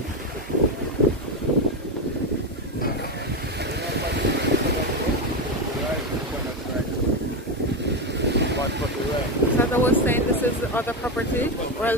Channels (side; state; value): both; normal; correlation 0.12